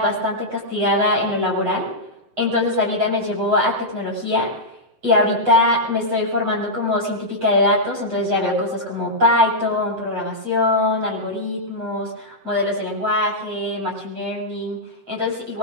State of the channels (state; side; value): late; left; 7.8 ms